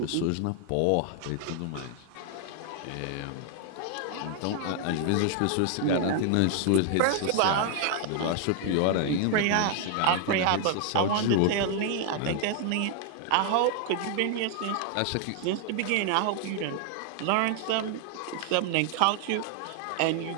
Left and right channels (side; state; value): both; different; correlation 0.00